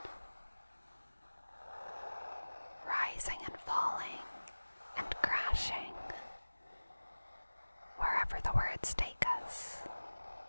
rising and falling and crashing wherever the words take us.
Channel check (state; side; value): inverted; both; correlation -1.00